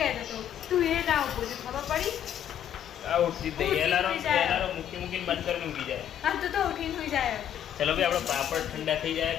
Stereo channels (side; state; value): right; quieter; 10.1 dB